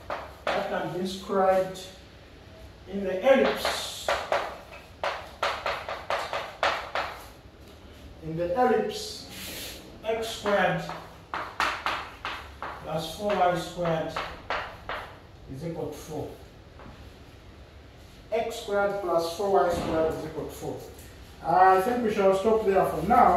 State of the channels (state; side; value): identical; both; correlation 1.00